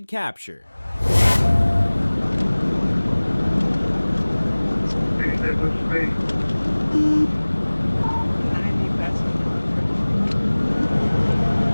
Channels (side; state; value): both; inverted; correlation -1.00